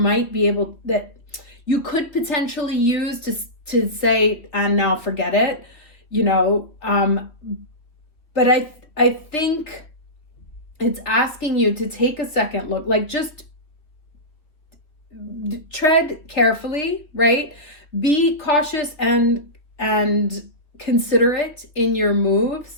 be able, that you could potentially use to say, and now forget it, but I think it's asking you to take a second look, like just tread carefully, right? Be cautious and considerate in your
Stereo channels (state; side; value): late; right; 3.4 ms